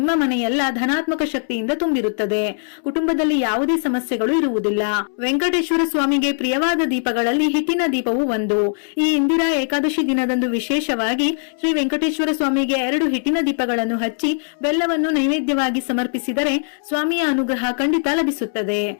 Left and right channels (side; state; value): right; silent; 66 dB below the other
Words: ಮನೆಯೆಲ್ಲ ಧನಾತ್ಮಕ ಶಕ್ತಿಯಿಂದ ತುಂಬಿರುತ್ತದೆ. ಕುಟುಂಬದಲ್ಲಿ ಯಾವುದೇ ಸಮಸ್ಯೆಗಳು ಇರುವುದಿಲ್ಲ. ವೆಂಕಟೇಶ್ವರ ಸ್ವಾಮಿಗೆ ಪ್ರಿಯವಾದ ದೀಪಗಳಲ್ಲಿ ಹಿಟ್ಟಿನ ದೀಪವು ಒಂದು. ಈ ಇಂದಿರಾ ಏಕಾದಶಿ ದಿನದಂದು ವಿಶೇಷವಾಗಿ ಶ್ರೀ ವೆಂಕಟೇಶ್ವರ ಸ್ವಾಮಿಗೆ 2 ಹಿಟ್ಟಿನ ದೀಪಗಳನ್ನು ಹಚ್ಚಿ ಬೆಲ್ಲವನ್ನು ನೈವೇದ್ಯವಾಗಿ ಸಮರ್ಪಿಸಿದರೆ ಸ್ವಾಮಿಯ ಅನುಗ್ರಹ ಖಂಡಿತ ಲಭಿಸುತ್ತದೆ.